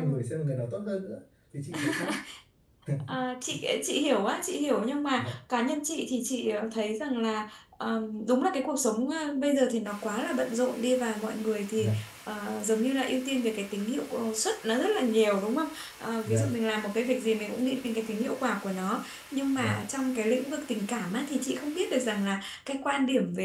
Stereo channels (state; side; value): identical; both; correlation 1.00